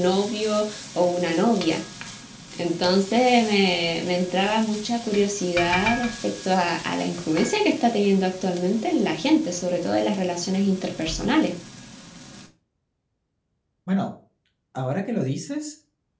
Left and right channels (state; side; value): identical; both; correlation 1.00